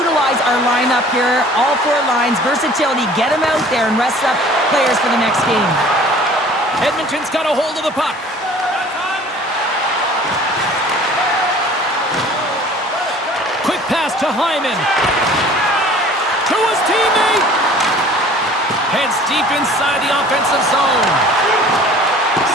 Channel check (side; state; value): both; normal; correlation 0.49